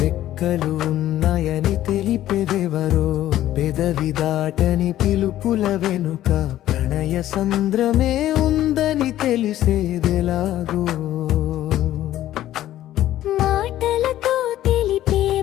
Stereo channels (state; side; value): quieter; right; 13.3 dB